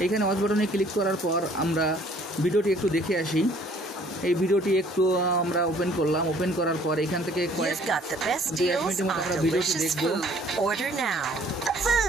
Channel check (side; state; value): both; normal; correlation 0.58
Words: এইখানে ওয়াচ বাটনে ক্লিক করার পর আমরা ভিডিওটি একটু দেখে আসি। এই ভিডিওটি একটু আমরা ওপেন করলাম। ওপেন করার পর এখান থেকে কয়েক মিনিটের মতো আমরা ভিডিওটি দেখব।